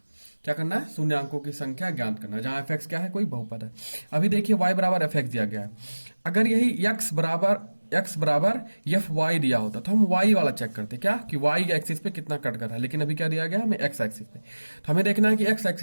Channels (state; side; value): inverted; both; correlation -1.00